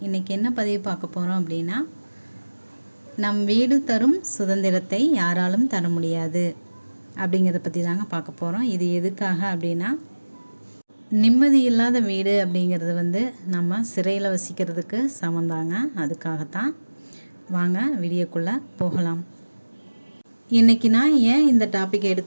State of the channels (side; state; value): both; inverted; correlation -1.00